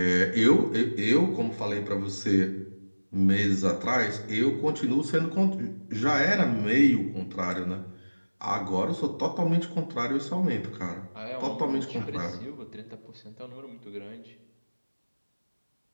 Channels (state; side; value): inverted; both; correlation -1.00